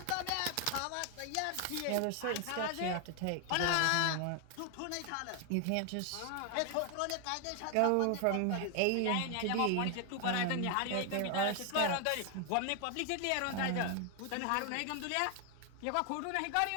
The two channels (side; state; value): both; different; correlation 0.00